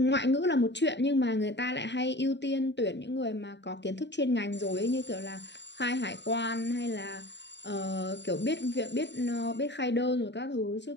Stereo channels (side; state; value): right; late; 0.51 ms